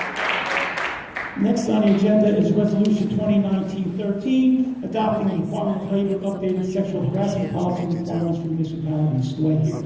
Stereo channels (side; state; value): both; identical; correlation 1.00